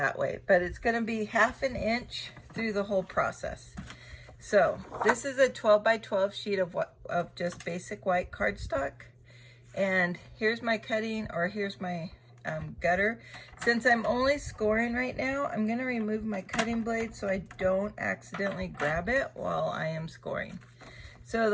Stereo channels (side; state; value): both; identical; correlation 1.00